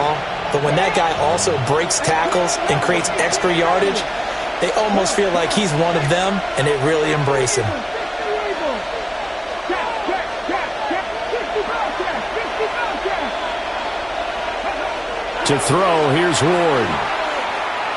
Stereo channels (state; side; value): identical; both; correlation 1.00